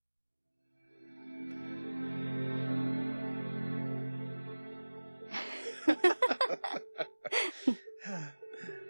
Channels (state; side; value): inverted; both; correlation -1.00